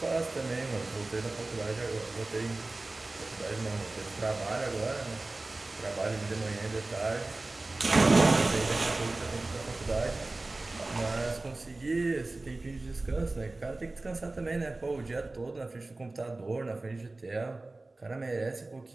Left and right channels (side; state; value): left; quieter; 3.1 dB